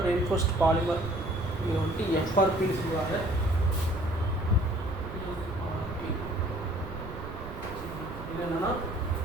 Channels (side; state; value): right; noise; rumble, 11 dB below the sound